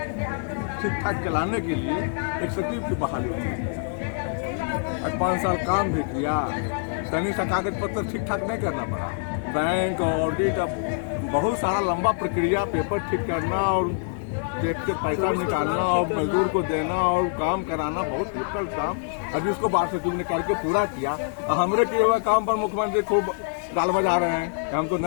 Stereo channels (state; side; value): silent; right; 57 dB below the other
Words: ठीक ठाक चलाने के लिए एक सचिव की बहाली की। आज 5 साल काम भी किया, सैनिक सा कागज पत्र ठीक ठाक नहीं करना पड़ा। बैंक ऑडिट, बहुत सारा लंबा प्रक्रिया, पेपर ठीक करना और टैक्स से पैसा निकालना और मजदूर को देना और काम कराना बहुत डिफिकल्ट काम। अभी उसको बात सचिव ने करके पूरा किया। हमरे किए हुए काम पर मुख्यमंत्री खूब गाल बजा रहे हैं कि हम तो